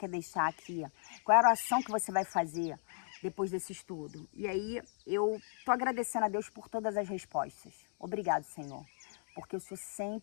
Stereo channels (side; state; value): right; silent; 54 dB below the other